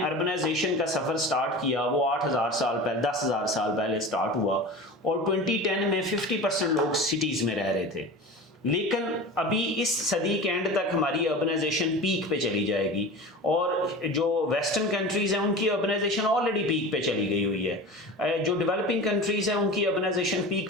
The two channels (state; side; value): normal; both; correlation 0.33